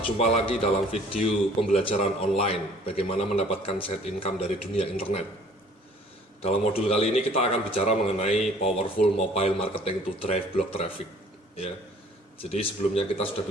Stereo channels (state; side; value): normal; both; correlation 0.54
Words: lagi dalam video pembelajaran online bagaimana mendapatkan side income dari dunia internet. Dalam modul kali ini kita akan bicara mengenai powerful mobile marketing to drive blog traffic ya. Jadi sebelumnya kita sudah